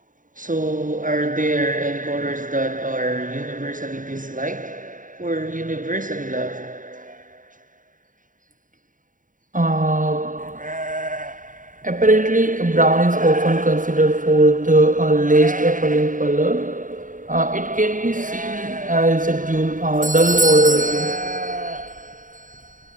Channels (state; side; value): late; left; 0.38 ms